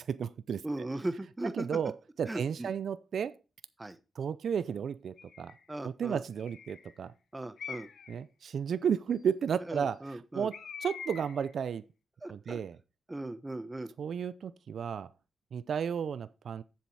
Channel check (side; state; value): left; quieter; 6.0 dB